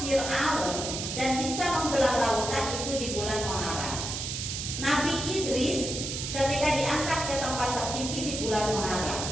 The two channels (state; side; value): noise; right; hiss, 4 dB below the sound